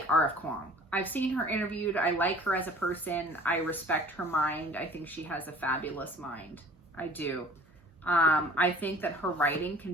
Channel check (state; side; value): normal; both; correlation 0.48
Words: R.F. Kuang. I've seen her interviewed. I like her as a person. I respect her mind. I think she has a fabulous mind. I do. I think that her writing can